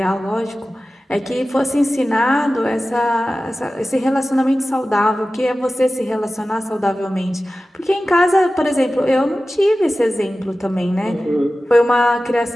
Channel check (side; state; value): both; normal; correlation 0.95